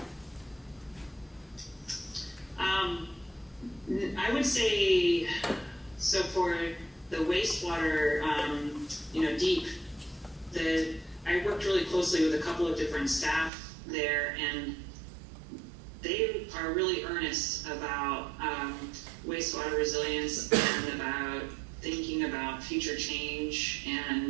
I would say, so for the wastewater, deep, I worked really closely with a couple of different staff there, and they are really earnest about wastewater resilience and about thinking about future change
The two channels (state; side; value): drops out; left; at 13.5 s